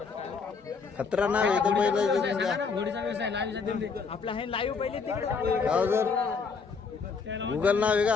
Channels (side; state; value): right; quieter; 5.2 dB